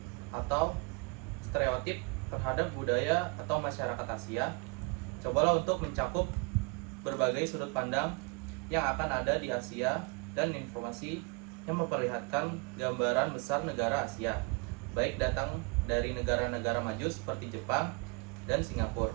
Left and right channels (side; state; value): left; quieter; 29.2 dB